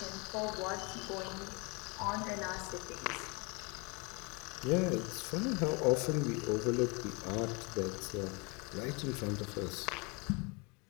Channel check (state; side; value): quieter; right; 30.2 dB